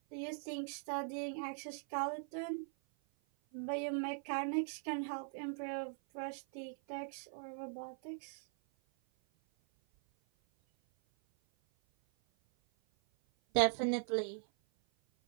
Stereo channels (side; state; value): left; silent; 51 dB below the other